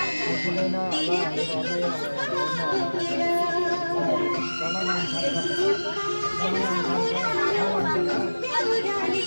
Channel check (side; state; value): both; inverted; correlation -1.00